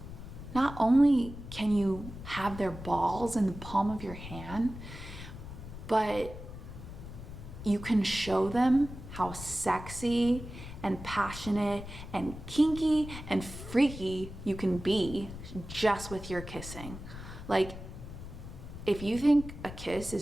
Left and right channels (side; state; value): left; noise; rumble, 11 dB below the sound